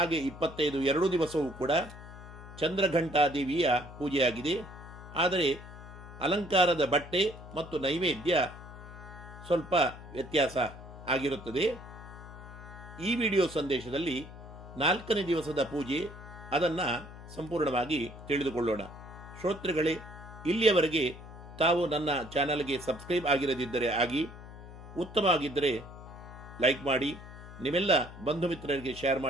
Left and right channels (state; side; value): noise; left; hum, 15 dB below the sound